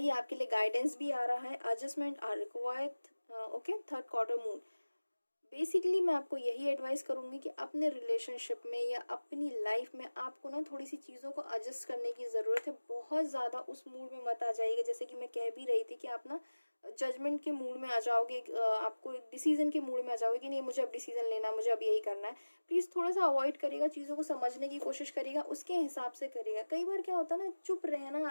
आपके लिए गाइडेंस भी आ रहा है। Adjustment are required. Okay, third quarter moon. Basically मैं आपको यही एडवाइस करूँगी कि अपने रिलेशनशिप में या अपनी लाइफ में आपको ना थोड़ी सी चीज़ों को एडजस्ट करने की ज़रूरत है। बहुत ज़्यादा उस मूड में मत आ जाइएगा, जैसे कि मैं कह भी रही थी कि आप ना जजमेंट के मूड में आ जाओगे, आपको एक डिसीजन के मूड में आ जाओगे कि नहीं मुझे अब डिसीजन लेना है, मुझे अब यही करना है। प्लीज़ थोड़ा सा अवॉइड करिएगा, चीज़ों को समझने की कोशिश करिएगा, उसके हिसाब से करिएगा। कई बार क्या होता है ना, चुप रहना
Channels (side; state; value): both; inverted; correlation -1.00